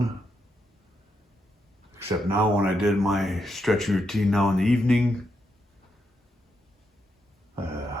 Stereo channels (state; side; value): normal; both; correlation 0.82